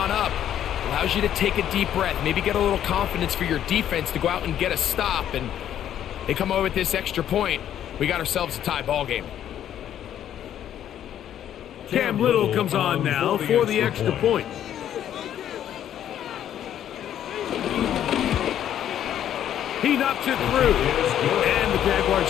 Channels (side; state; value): right; quieter; 10.6 dB